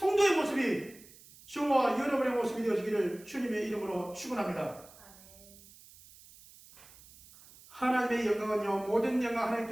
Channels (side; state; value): right; noise; hiss, 22 dB below the sound